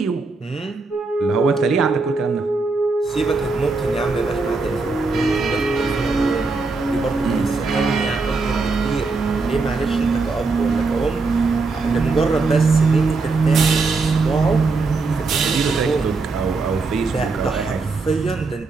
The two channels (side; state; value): left; quieter; 3.9 dB